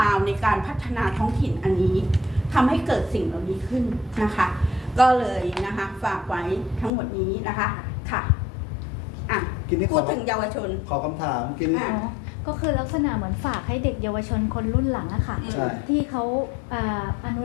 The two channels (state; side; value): drops out; right; at 6.9 s